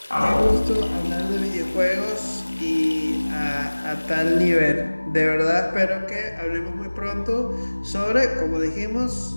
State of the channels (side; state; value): both; inverted; correlation -1.00